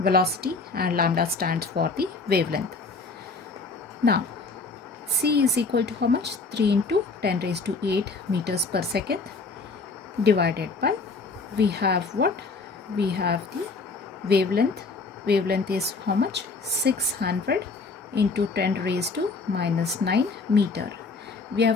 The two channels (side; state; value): right; quieter; 4.0 dB